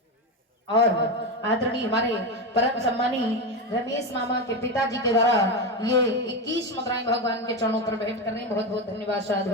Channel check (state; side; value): normal; both; correlation 0.15